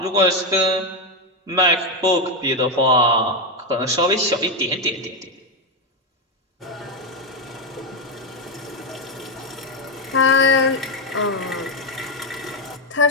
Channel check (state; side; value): normal; both; correlation 0.06